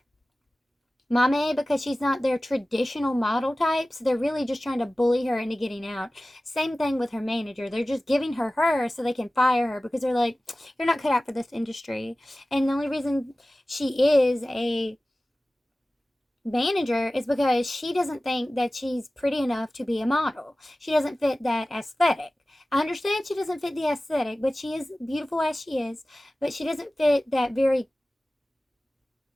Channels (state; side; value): normal; both; correlation 0.97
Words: Mame because she's not their traditional model type. So they're really just trying to bully her into getting out. Same thing with her manager. They're just giving her so they can fire her because they're like, you're not cut out for this industry. And the only reason she is a manager is because she doesn't think that she's pretty enough to be a model. She doesn't fit that aesthetic. I understand she doesn't fit the aesthetic, but she is beautiful as she is, but she doesn't fit that very